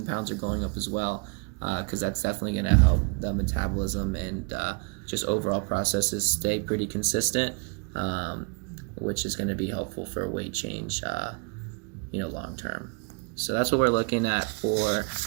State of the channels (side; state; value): left; quieter; 34.8 dB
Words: pounds are going up as well, because that's definitely going to help the metabolism and just overall processes stay pretty consistent, which is going to be helpful for weight change, long term. So that's what we're looking at for